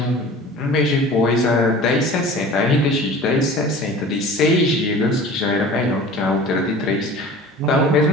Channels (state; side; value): normal; both; correlation 0.41